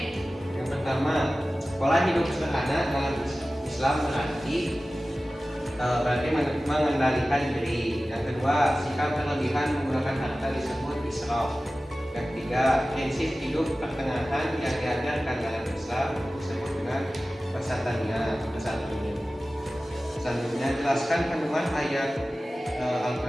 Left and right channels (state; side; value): normal; both; correlation 0.96